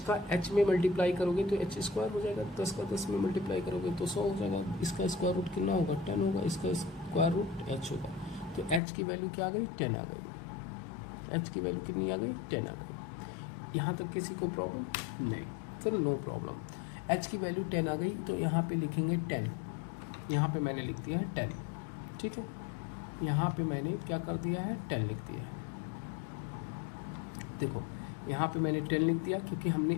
h में मल्टीप्लाई करोगे तो h स्क्वायर हो जाएगा, 10 का 10 में मल्टीप्लाई करोगे तो 100 हो जाएगा। इसका स्क्वायर रूट कितना होगा, 10 होगा, इसका स्क्वायर रूट h होगा। तो h की वैल्यू क्या आ गई, 10 आ गई। h की वैल्यू कितनी आ गई, 10 आ गई। यहाँ तक किसी को प्रॉब्लम नहीं, सर नो प्रॉब्लम। h की वैल्यू 10 आ गई तो यहाँ पे लिखेंगे 10, यहाँ पे मैंने लिख दिया है 10, ठीक है। यहाँ पे मैंने क्या कर दिया है, 10 लिख दिया है। देखो यहाँ पे मैंने 10 लिख दिया क्योंकि हमने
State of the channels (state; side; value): drops out; right; at 8.8 s